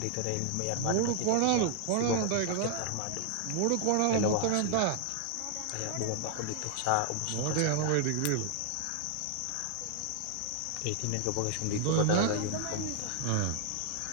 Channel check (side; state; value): both; different; correlation 0.00